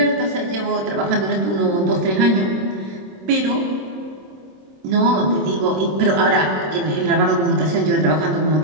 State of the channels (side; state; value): left; late; 26 ms